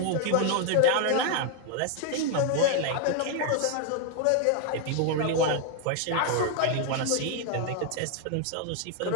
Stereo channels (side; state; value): both; different; correlation 0.00